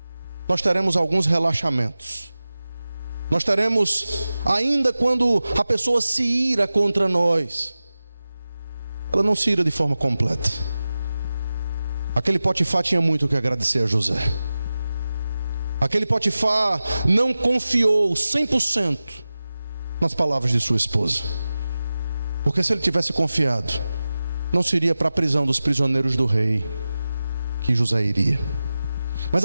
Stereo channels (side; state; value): both; inverted; correlation -0.95